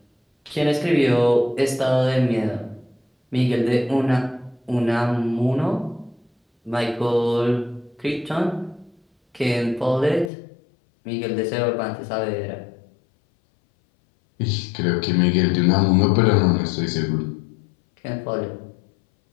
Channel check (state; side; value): drops out; right; at 10.3 s